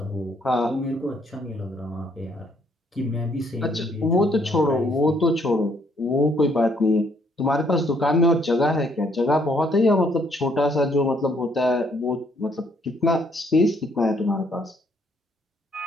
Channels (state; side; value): normal; both; correlation 0.68